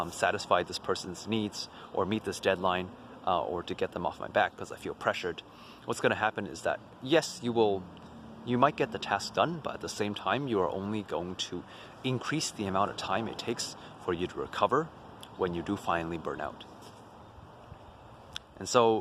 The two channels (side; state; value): both; identical; correlation 1.00